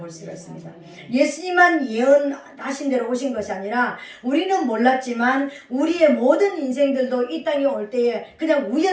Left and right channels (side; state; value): both; identical; correlation 1.00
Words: 수가 있습니다. 예수님만 예언하신 대로 오신 것이 아니라 우리는 몰랐지만 우리의 모든 인생들도 이 땅에 올 때에 그냥